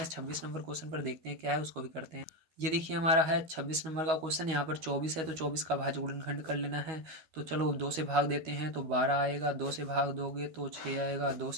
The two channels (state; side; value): late; left; 13 ms